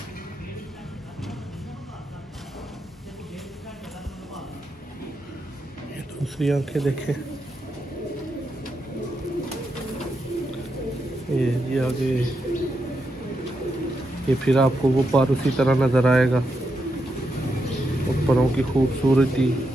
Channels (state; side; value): normal; both; correlation 0.84